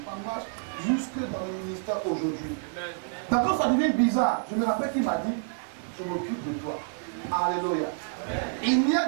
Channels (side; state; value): left; silent; digital silence